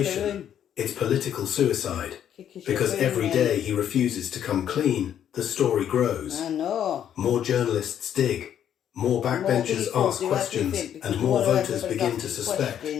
it's political suicide. Because every day he refuses to come clean, the story grows. I know. More journalists dig. More backbenchers ask questions, and more voters begin to suspect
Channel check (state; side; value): quieter; right; 9.8 dB